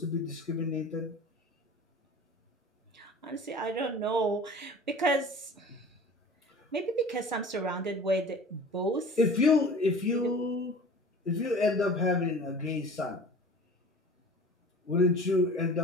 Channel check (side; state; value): both; normal; correlation 0.41